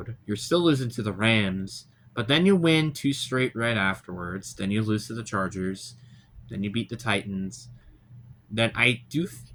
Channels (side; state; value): both; identical; correlation 1.00